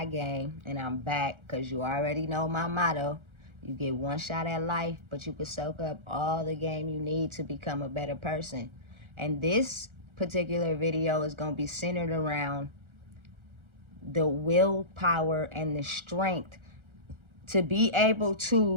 Game, and I'm back because you already know my motto. You get one shot at life, but you can soak up all the game you need to become a better person. And this particular video is going to be centered around the willpower and the strength to be able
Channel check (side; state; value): left; late; 1.4 ms